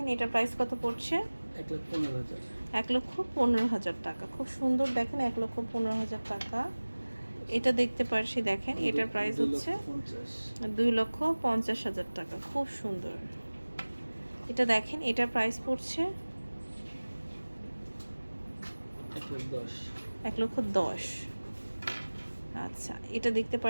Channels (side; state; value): both; inverted; correlation -1.00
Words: এটার প্রাইস কত পড়ছে? 1,15,000 টাকা। খুব সুন্দর, দেখেন 1,15,000 টাকা। এটা দেখতে পাচ্ছি, দেখেন এটার প্রাইস হচ্ছে 2,50,000 টাকা। খুব সুন্দর। এটা দেখেন, এটার প্রাইস পড়ছে 1,10,000। আচ্ছা, এটা দেখতে